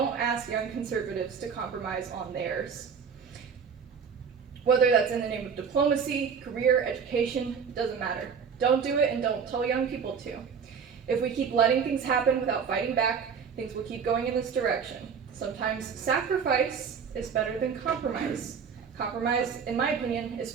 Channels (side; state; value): left; quieter; 6.5 dB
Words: ask young conservatives to compromise on theirs. Whether that's in the name of diplomacy, career, education, doesn't matter. Don't do it, and don't tell young people to. If we keep letting things happen without fighting back, things will keep going in this direction. Sometimes sacrifice is better than compromise. Compromise, in my opinion, is